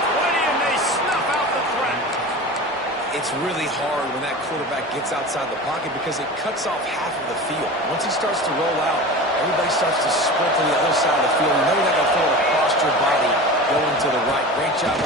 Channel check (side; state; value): both; normal; correlation 0.33